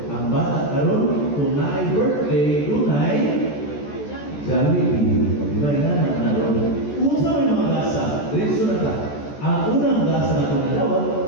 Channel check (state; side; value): late; right; 14 ms